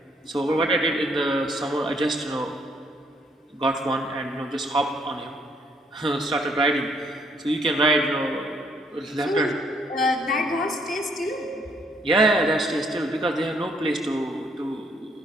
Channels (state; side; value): normal; both; correlation 0.68